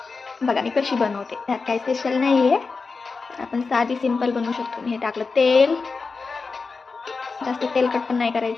बघा मी कशी बनवते. त्यात काही स्पेशल नाही आहे, आपण साधी सिंपल बनवू शकतो. मी हे टाकलं तेल, जास्त तेलकट पण नाही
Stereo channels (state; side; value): quieter; right; 4.4 dB